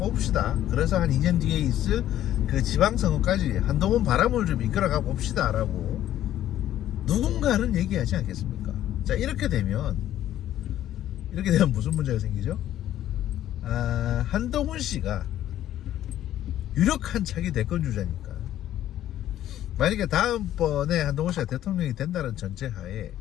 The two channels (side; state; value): right; quieter; 12.4 dB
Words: 그래서 한 2년 뒤에 있을 그 지방선거까지 한동훈 바람을 좀 이끌어가 봅시다 라고 누군가는 얘기하지 않겠습니까? 자, 이렇게 되면 무슨 문제가 생기죠? 한동훈 씨가 유력한 차기 대권 주자니까, 만약에 다음번에 한동훈 씨가 대통령이 된다는 전제하에